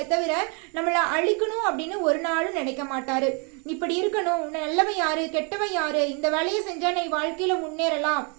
தவிர நம்மள அழிக்கணும் அப்படின்னு ஒரு நாளும் நினைக்க மாட்டாரு. இப்படி இருக்கணும், நல்லவன் யாரு கெட்டவன் யாரு, இந்த வேலையை செஞ்சா நீ வாழ்க்கையில முன்னேறலாம்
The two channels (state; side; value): quieter; left; 35.4 dB